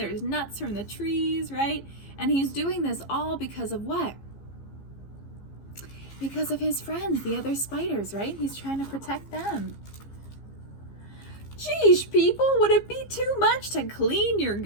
nuts from the trees, right? And he's doing this all because of what? Because of his friends, the other spiders, right? He's trying to protect them. Geesh, people, would it be too much to clean your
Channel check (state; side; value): late; right; 15 ms